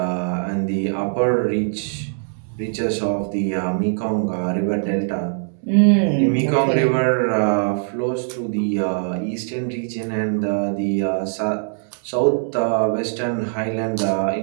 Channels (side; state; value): left; silent; 59 dB below the other